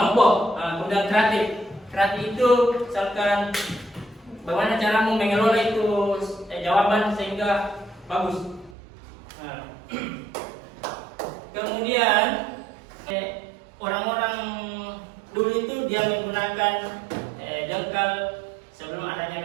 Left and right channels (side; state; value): left; drops out; at 8.8 s